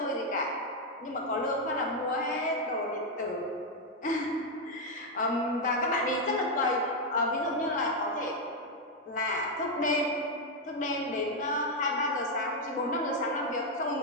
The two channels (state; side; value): normal; both; correlation 0.02